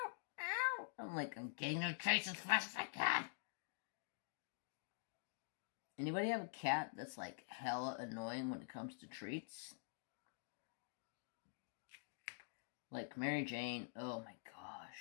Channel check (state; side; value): silent; right; digital silence